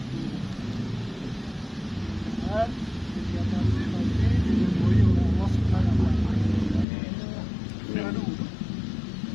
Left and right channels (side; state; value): right; drops out; at 6.9 s